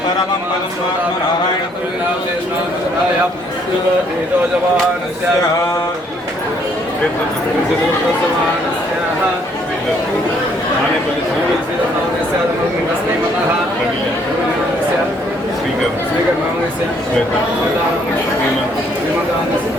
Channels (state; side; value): normal; both; correlation 0.66